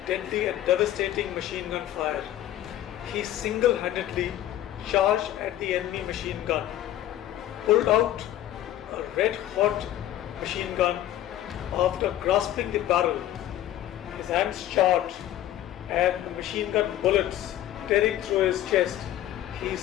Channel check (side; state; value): right; quieter; 12.9 dB